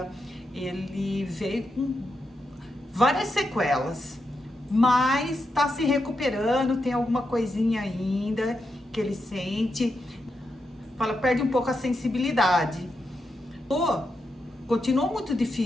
ele veio com várias sequelas, mas tá se recuperando, tem alguma coisinha ainda que ele sente, perde um pouco a sensibilidade. Continuou muito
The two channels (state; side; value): normal; both; correlation 0.85